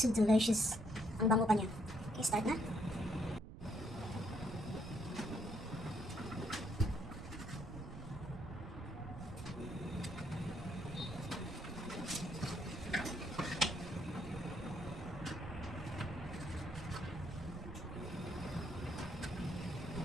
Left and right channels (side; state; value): right; noise; rumble, 12 dB below the sound